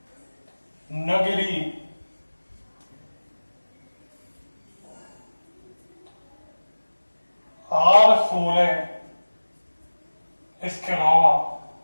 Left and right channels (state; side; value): inverted; both; correlation -1.00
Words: नगरी, R16, इसके अलावा